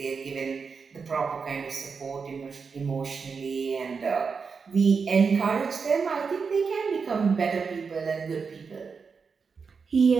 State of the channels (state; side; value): quieter; left; 5.4 dB